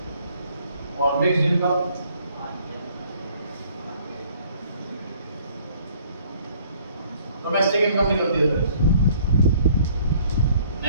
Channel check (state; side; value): inverted; both; correlation -0.60